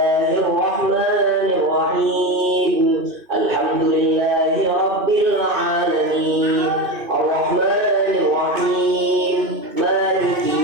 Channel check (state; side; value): late; left; 2.5 ms